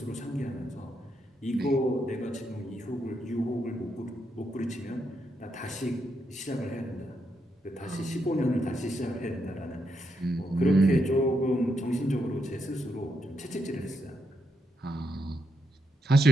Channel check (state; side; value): normal; both; correlation 0.81